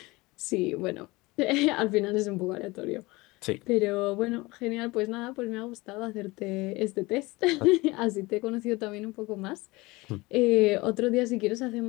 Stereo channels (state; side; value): quieter; right; 22.4 dB